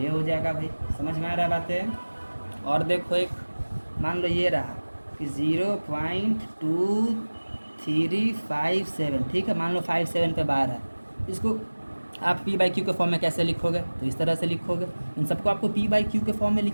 हो जाएगा भाई, समझ में आ रहा बातें। और देखो एक मान लो ये रहा कि 0.2357, ठीक है, मान लो 57 पे बार है, इसको आप P/Q के फॉर्म में कैसे लिखोगे, तो इस तरह से लिखोगे। इन सबको आपको P/Q के फॉर्म में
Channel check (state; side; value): inverted; both; correlation -1.00